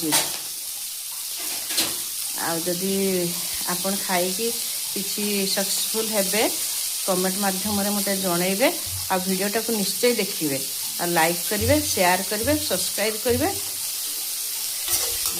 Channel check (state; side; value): identical; both; correlation 1.00